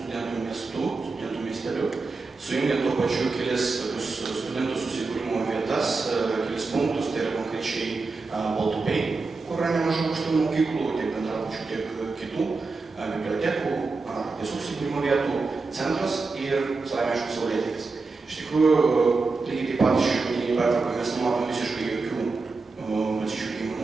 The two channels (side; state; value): left; quieter; 4.0 dB